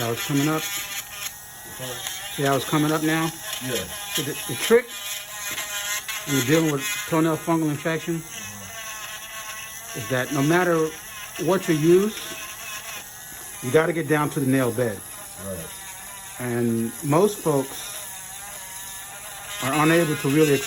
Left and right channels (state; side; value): identical; both; correlation 1.00